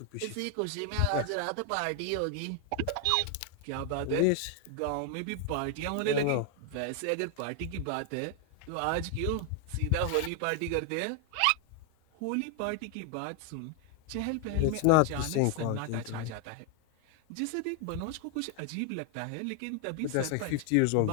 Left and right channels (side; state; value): both; different; correlation 0.00